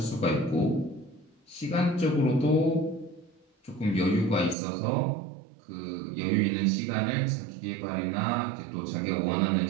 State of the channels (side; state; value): left; drops out; at 4.5 s